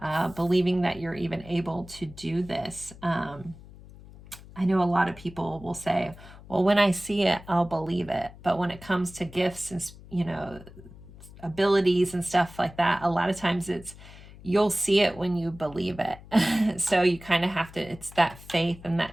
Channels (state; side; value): noise; left; hum, 19 dB below the sound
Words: believing that you're even able to do this. I know a lot of people will say, well, when I see it, I'll believe it. But when it comes to gifts and, you know, abilities and stuff like that, a lot of times you'll see it when you believe it. So you kind of have to, it's that faith and